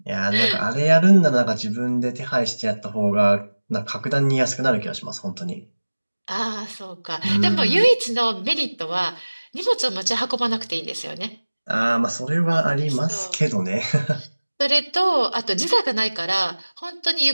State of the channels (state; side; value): inverted; both; correlation -1.00